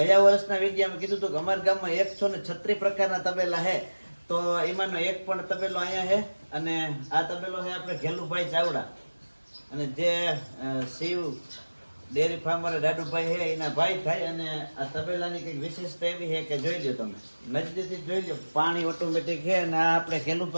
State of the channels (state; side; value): inverted; both; correlation -1.00